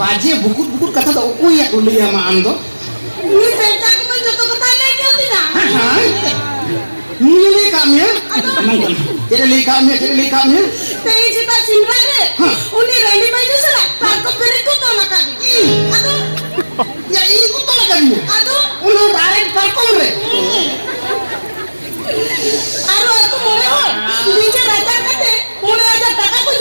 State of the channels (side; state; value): both; inverted; correlation -1.00